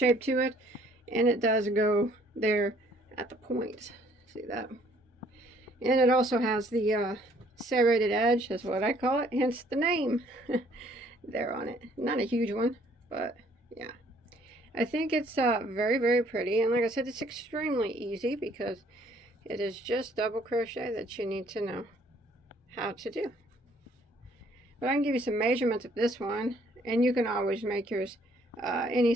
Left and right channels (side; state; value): both; normal; correlation 0.62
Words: to it, and it does go there at the point. See that? And it also has the serrated edge, that's what I call it, hence the name there on it. Not a huge one, but yeah. I think it's very, very pretty, and like I said, it's extremely easy because it is just double crochet that you need to know how to do. But I can give you some measurements of this one, and you can always make yours any